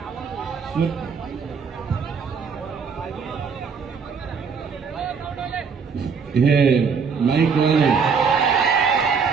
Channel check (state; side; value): quieter; left; 5.7 dB